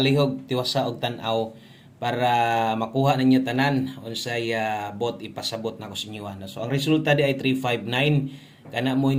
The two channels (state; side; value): identical; both; correlation 1.00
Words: tiwasa og tan-aw para makuha ninyo tanan unsay bot ipasabot na ko sa inyo. No? So ang resulta di ay 359 kana mo